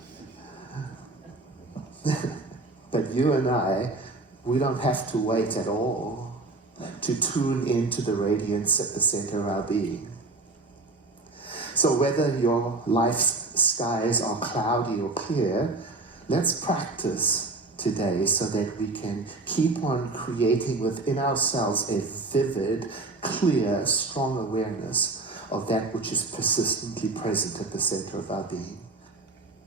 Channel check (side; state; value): left; quieter; 3.3 dB